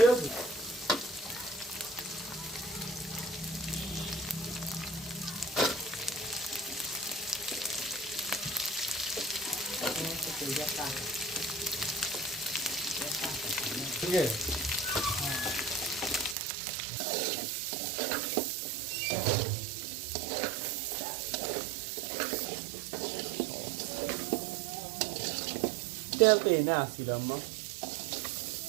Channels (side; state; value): left; drops out; at 16.4 s